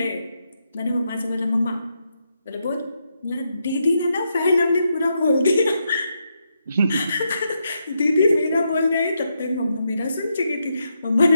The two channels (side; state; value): both; inverted; correlation -0.82